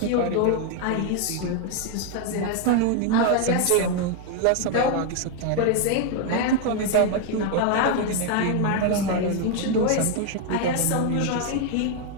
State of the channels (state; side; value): different; both; correlation 0.00